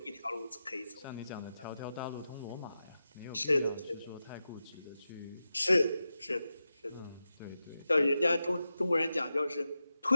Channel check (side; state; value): both; inverted; correlation -0.91